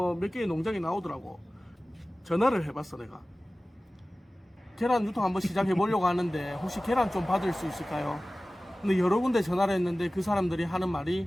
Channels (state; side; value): normal; both; correlation 0.97